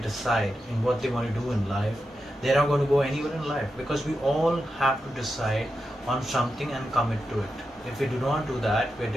in what they want to do in life, they're not going to go anywhere in life because we all have to decide on something and commit to it. If we do not do that, we're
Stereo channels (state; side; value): normal; both; correlation 0.89